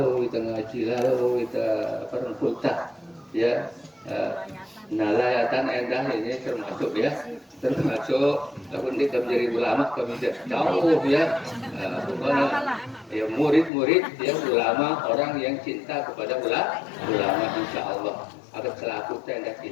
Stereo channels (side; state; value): right; drops out; at 13.7 s